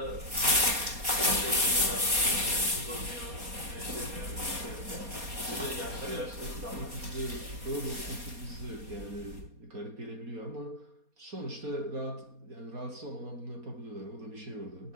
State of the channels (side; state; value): left; late; 4.2 ms